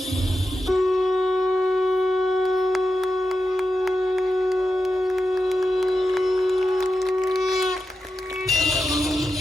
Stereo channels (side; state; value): both; normal; correlation 0.90